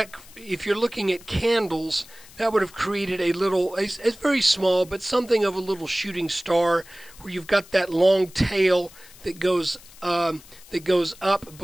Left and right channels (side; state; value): left; noise; hiss, 22 dB below the sound